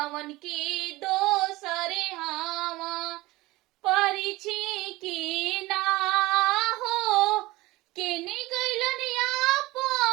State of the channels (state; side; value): quieter; left; 20.0 dB